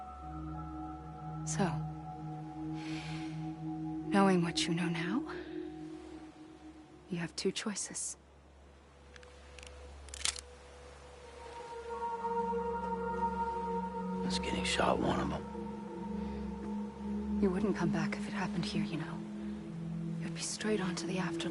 So, knowing what you know now, you have two choices. Is getting shot one of them? You wouldn't come back if it happened here, you know. You'd be straight on to the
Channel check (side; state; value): both; identical; correlation 1.00